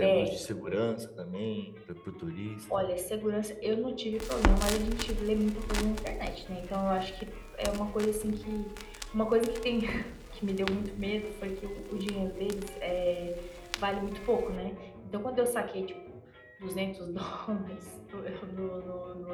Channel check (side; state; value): both; identical; correlation 1.00